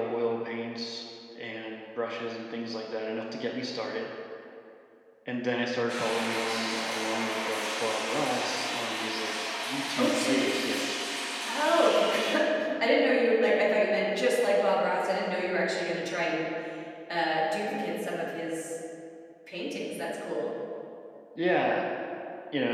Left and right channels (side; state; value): both; identical; correlation 1.00